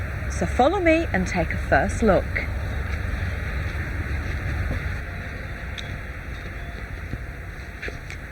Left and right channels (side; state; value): both; identical; correlation 1.00